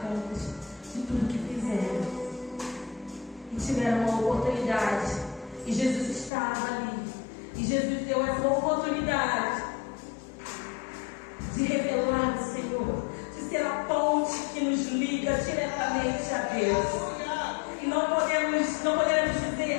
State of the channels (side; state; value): right; drops out; at 6.3 s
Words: contas de tudo que fizeram. E tiveram uma oportunidade. E Jesus estava ali. E Jesus deu essa oportunidade de revelar o Senhor, de ser a ponte que nos liga diretamente a Deus. E não podemos